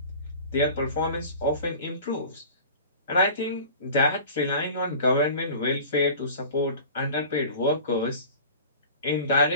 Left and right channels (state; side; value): inverted; both; correlation -0.40